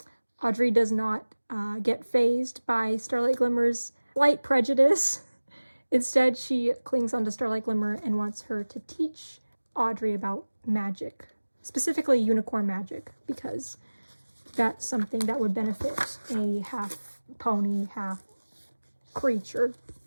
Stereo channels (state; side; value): inverted; both; correlation -1.00